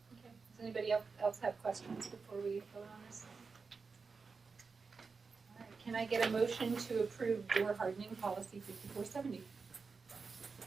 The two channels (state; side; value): quieter; left; 4.8 dB